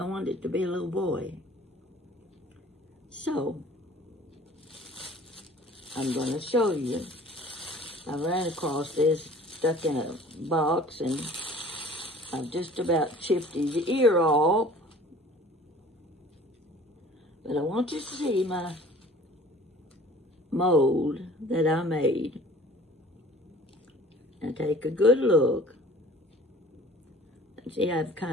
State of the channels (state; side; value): normal; both; correlation 0.48